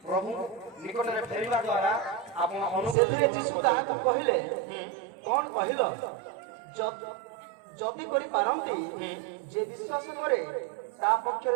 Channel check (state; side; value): drops out; left; at 3.0 s